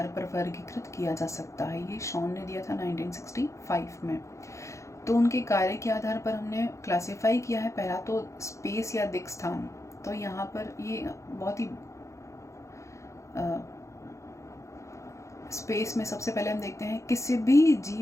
पर वर्गीकृत किया जा सकता है। ये शॉन ने दिया था 1965 में। तो उनके कार्य के आधार पर हमने क्लासिफाई किया है। पहला तो स्पेस या दिक् स्थान। तो यहाँ पर ये बहुत ही स्पेस में सबसे पहले हम देखते हैं किसी भी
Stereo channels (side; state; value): right; late; 0.15 ms